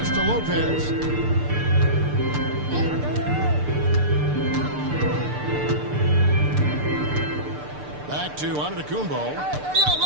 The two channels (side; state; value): left; late; 6.8 ms